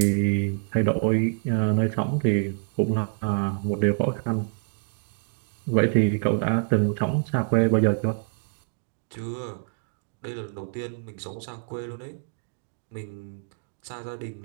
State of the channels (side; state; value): left; silent; digital silence